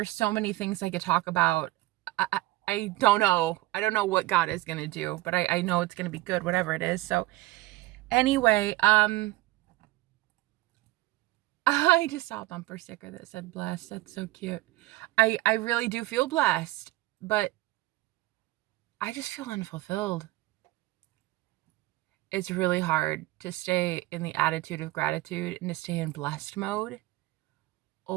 so many things I could talk about. I don't know. I don't know what God is gonna do, but I know it's gonna be good, whatever it is. So anyway, I just saw a bumper sticker that said blessed. That's so cute. I really do feel blessed, but I just feel unfulfilled. It's really hard to stay in the attitude of gratitude and to stay in blessed mode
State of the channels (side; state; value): left; quieter; 18.5 dB